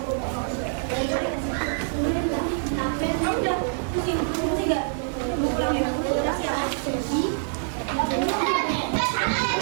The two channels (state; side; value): silent; left; digital silence